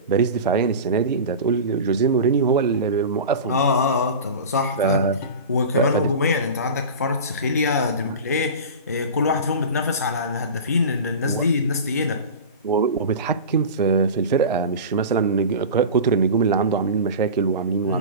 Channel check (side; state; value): both; inverted; correlation -0.30